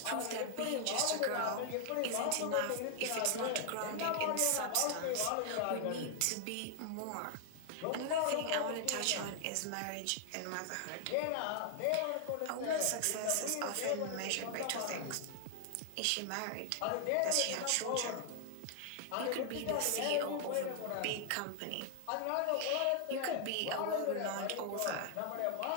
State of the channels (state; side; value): different; both; correlation 0.00